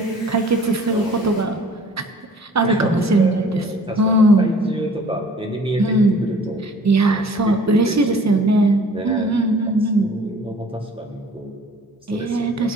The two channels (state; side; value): normal; both; correlation 0.51